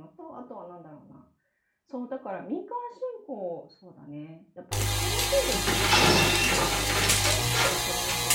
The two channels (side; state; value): both; identical; correlation 1.00